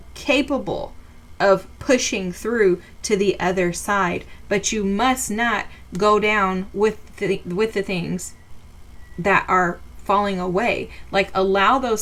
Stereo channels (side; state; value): both; identical; correlation 1.00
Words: capable of pushing through to the other side. But you must not go down with the things that are falling away. Like, allow those